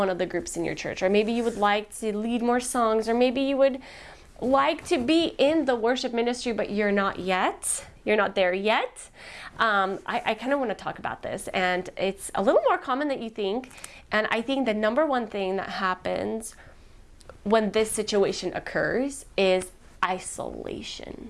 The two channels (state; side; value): identical; both; correlation 1.00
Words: of the groups in your church, or maybe you would like to lead more songs, or maybe you would like to be in the worship ministry, but you're not there yet. I kind of want to talk about this, and it's a little more common than you think. And I think the number one thing that happens when this situation occurs is isolation.